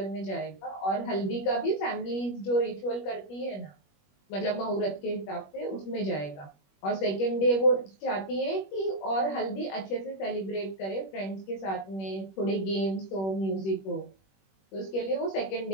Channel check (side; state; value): right; late; 21 ms